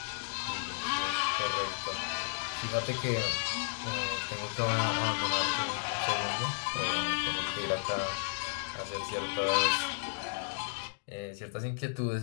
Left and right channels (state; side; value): silent; right; digital silence